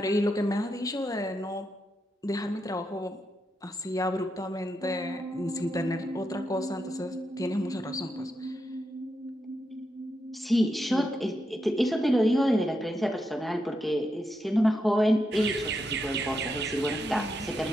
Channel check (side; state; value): both; normal; correlation 0.84